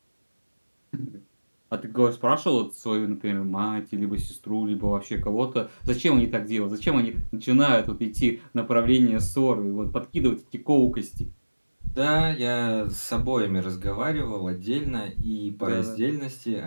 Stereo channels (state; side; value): inverted; both; correlation -1.00